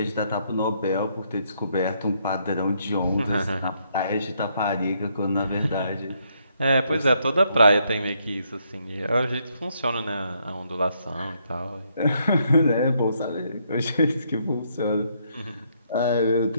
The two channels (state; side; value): inverted; both; correlation -0.74